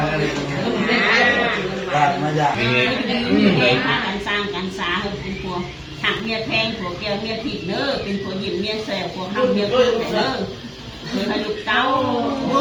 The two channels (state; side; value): identical; both; correlation 1.00